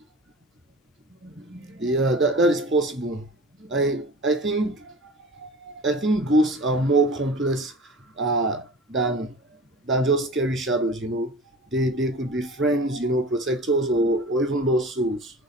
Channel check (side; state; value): both; normal; correlation 0.38